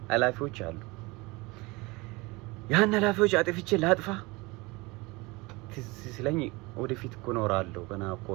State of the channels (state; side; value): quieter; left; 24.2 dB